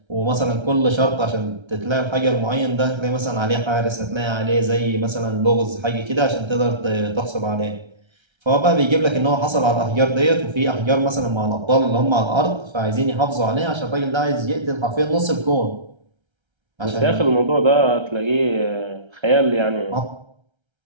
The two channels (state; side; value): late; left; 1.3 ms